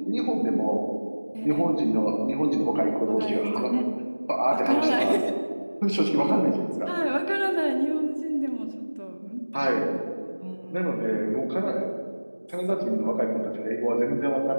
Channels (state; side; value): inverted; both; correlation -1.00